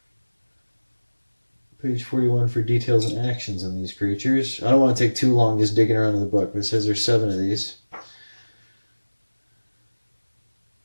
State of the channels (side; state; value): both; inverted; correlation -1.00